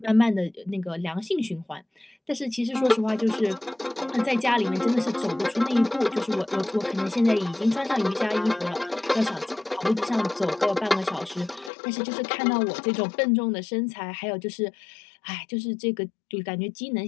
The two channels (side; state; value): right; drops out; at 11.7 s